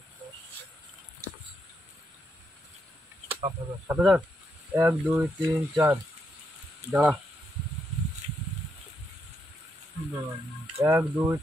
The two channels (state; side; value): normal; both; correlation 0.80